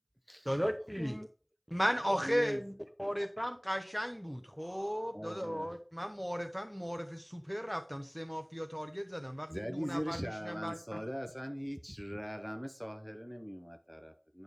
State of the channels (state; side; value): identical; both; correlation 1.00